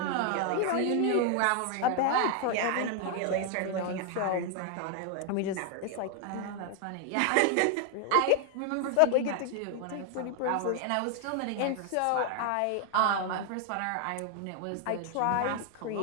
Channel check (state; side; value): different; both; correlation 0.00